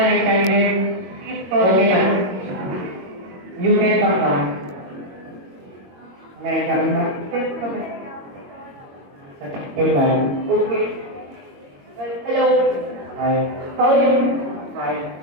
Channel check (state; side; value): late; left; 22 ms